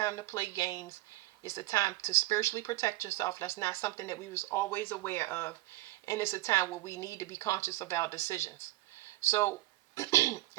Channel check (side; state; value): left; quieter; 18.2 dB